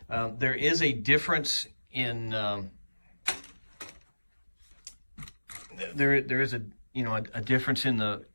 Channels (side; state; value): both; inverted; correlation -1.00